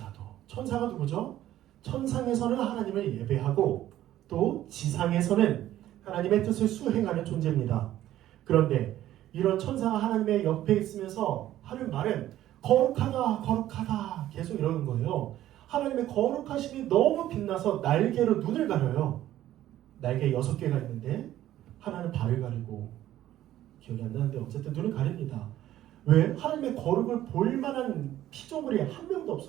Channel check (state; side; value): quieter; left; 13.3 dB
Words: 천사가 누구죠? 천상에서는 하나님을 예배하고 또 지상에서는 하나님의 뜻을 수행하는 존재입니다. 그런데 이런 천사가 하나님의 옆에 있으면서 하는 말은 거룩하다 거룩하다 계속 이러는 거예요. 하나님의 거룩하심이 너무 빛나서 날개로 눈을 가려요. 날개 6개가 있는데 하나는 발을 가리고 기억이 안 나는데 어쨌든 눈을 가립니다. 왜? 하나님의 거룩을 볼 만한 피조물이 한 명도